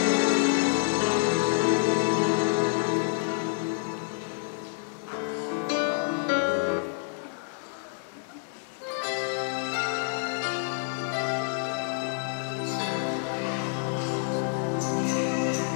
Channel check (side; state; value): right; silent; 59 dB below the other